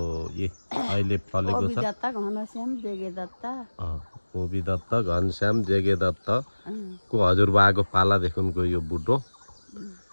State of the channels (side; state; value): both; inverted; correlation -1.00